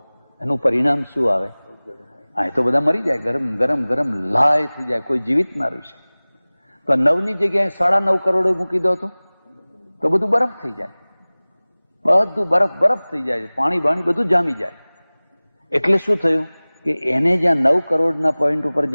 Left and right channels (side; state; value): both; inverted; correlation -1.00